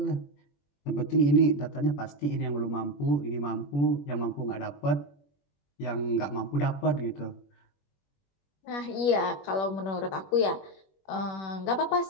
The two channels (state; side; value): late; right; 21 ms